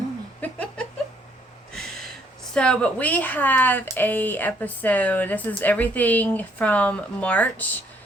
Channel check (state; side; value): normal; both; correlation 0.66